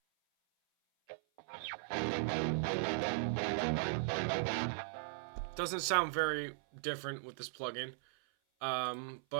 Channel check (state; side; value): silent; left; 52 dB below the other